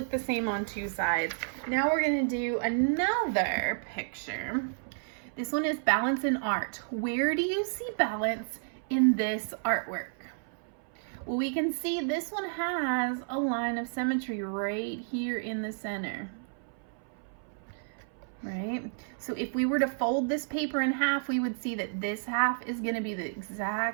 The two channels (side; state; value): left; silent; 57 dB below the other